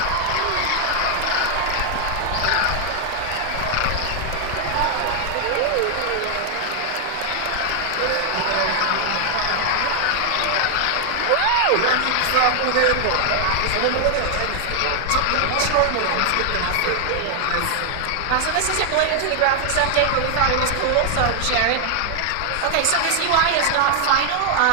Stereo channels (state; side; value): different; both; correlation 0.00